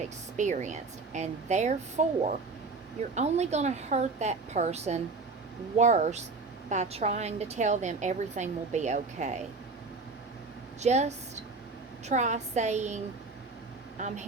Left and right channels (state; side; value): quieter; left; 4.0 dB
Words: And therefore, you're only going to hurt that person worse by trying to tell them everything will be okay. Just try saying, "I'm